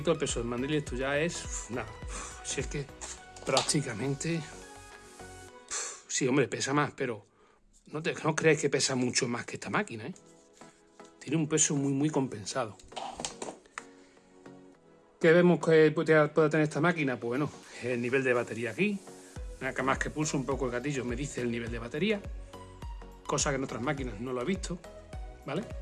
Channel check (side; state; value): both; identical; correlation 1.00